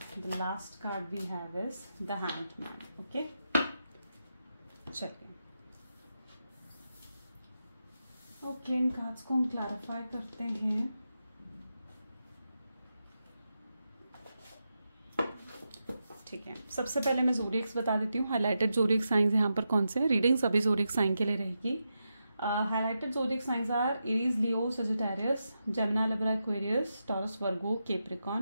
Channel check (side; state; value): both; inverted; correlation -0.87